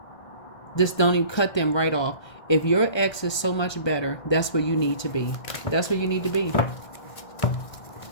just don't even cut them right off. If your ex is so much better, that's where you need to be. That's where you need to be.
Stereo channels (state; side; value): late; right; 1.2 ms